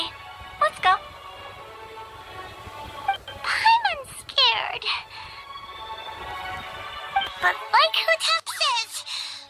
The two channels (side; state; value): both; identical; correlation 1.00